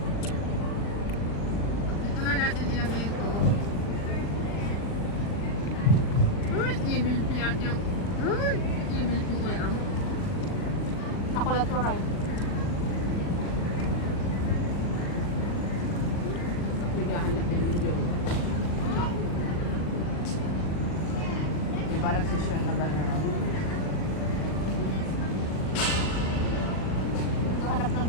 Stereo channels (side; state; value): right; late; 39 ms